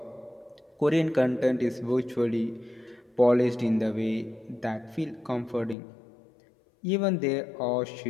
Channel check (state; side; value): drops out; right; at 5.8 s